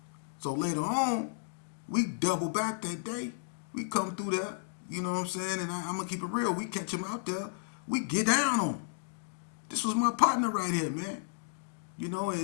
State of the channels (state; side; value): silent; right; digital silence